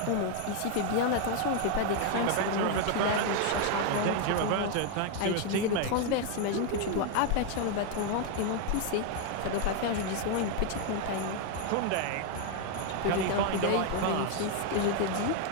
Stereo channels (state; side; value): different; both; correlation 0.01